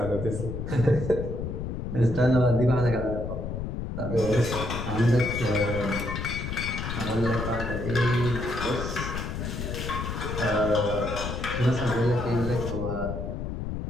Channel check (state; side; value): noise; left; rumble, 4 dB below the sound